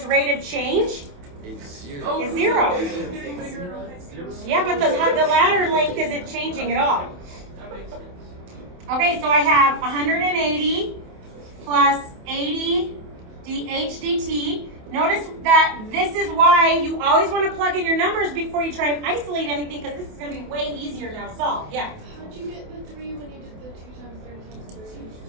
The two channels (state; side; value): late; left; 28 ms